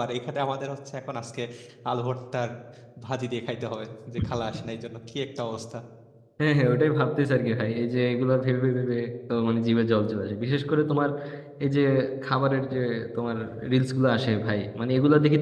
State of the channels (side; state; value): both; identical; correlation 1.00